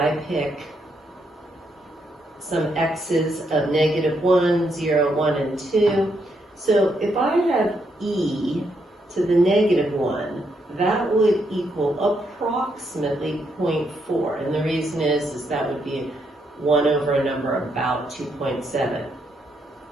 pick some x's of -1, 0, 1, and 2, so if I have e to the -1, that would equal approximately 0.4. And the reason is that would be 1 over a number about 2.7.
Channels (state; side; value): normal; both; correlation 0.77